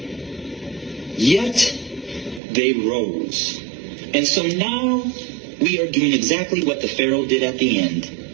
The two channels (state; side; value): drops out; left; at 2.4 s